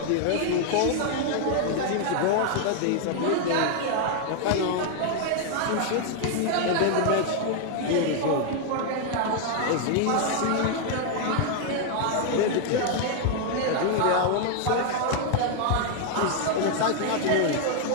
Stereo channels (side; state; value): both; different; correlation 0.00